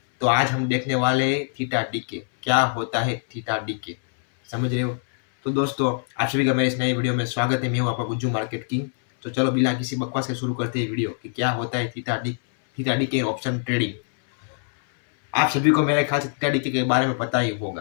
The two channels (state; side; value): silent; right; 63 dB below the other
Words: तो आज हम देखने वाले हैं थीटा डीके। क्या होता है थीटा डीके, समझ रहे हो? तो दोस्तों, आप सभी का मेरे इस नए वीडियो में स्वागत है। मैं हूँ आपका गुज्जू मार्केट किंग। तो चलो बिना किसी बकवास के शुरू करते हैं वीडियो कि क्या होता है थीटा डीके ऑप्शन ट्रेडिंग। आप सभी को मेरे ख्याल से थीटा डीके के बारे में पता ही